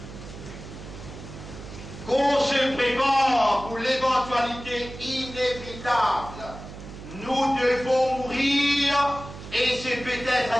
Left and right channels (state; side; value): noise; right; hum, 13 dB below the sound